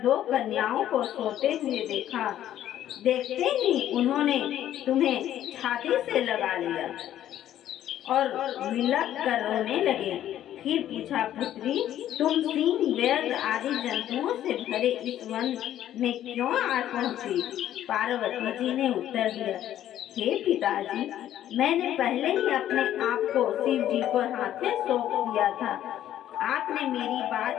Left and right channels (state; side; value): quieter; right; 11.8 dB